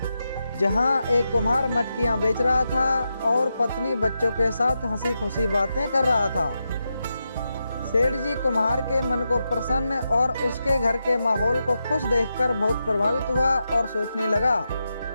जहां एक कुम्हार मटकियां बेच रहा था और पत्नी बच्चों के साथ हंसी खुशी बातें कर रहा था। सेठ जी कुम्हार के मन को प्रसन्न और उसके घर के माहौल को खुश देखकर बहुत प्रभावित हुआ और सोचने लगा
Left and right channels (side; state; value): both; inverted; correlation -0.87